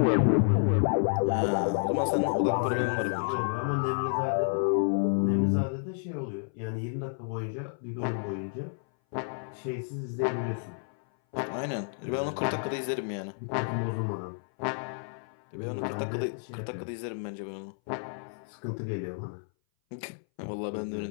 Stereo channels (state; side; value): silent; right; 58 dB below the other